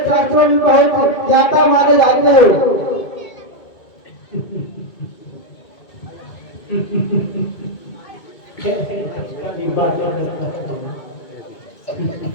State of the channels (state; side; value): late; right; 2.2 ms